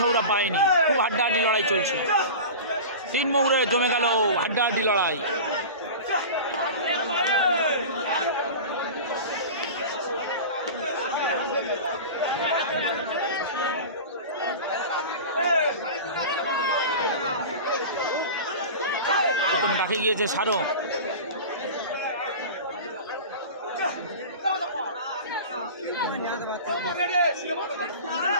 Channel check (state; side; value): inverted; both; correlation -0.32